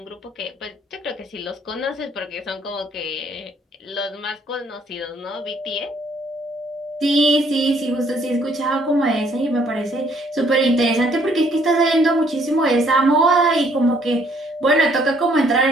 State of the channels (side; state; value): both; normal; correlation 0.64